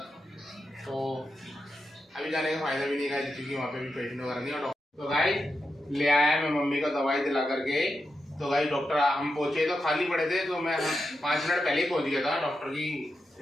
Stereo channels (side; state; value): both; normal; correlation 0.87